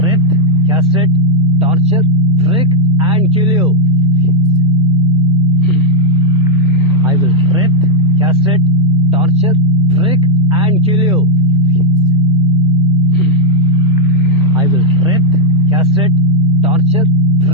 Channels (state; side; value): normal; both; correlation 0.01